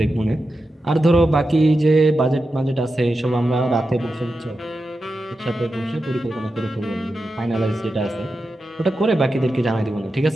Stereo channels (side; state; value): both; normal; correlation 0.90